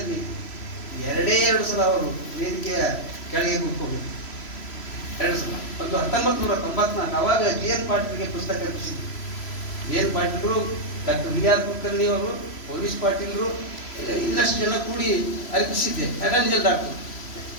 2 ಸಲ ಅವರು ವೇದಿಕೆಯ ಕೆಳಗೆ ಕೂತ್ಕೊಂಡಿದ್ರು. 2 ಸಲ. ಒಂದು 1994 ಅವಾಗ ಜಿ.ಎನ್. ಪಾಟೀಲ್ಗೆ ಪುಸ್ತಕ ರಚಿಸಿದ್ರು. ಜಿ.ಎನ್. ಪಾಟೀಲ್ರು, ಡಾಕ್ಟರ್ ವಿ.ಆರ್. ಕುಲಕರ್ಣಿ ಅವರು, ಪೊಲೀಸ್ ಪಾಟೀಲ್ರು, ಇನ್ನಷ್ಟು ಜನ ಕೂಡಿ ಅರ್ಪಿಸಿದ್ದೆ. ಅಟರ್ನಿ ಡಾಕ್ಟರ್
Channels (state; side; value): late; right; 3.0 ms